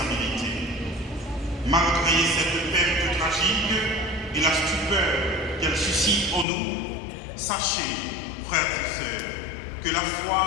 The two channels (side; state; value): right; drops out; at 6.5 s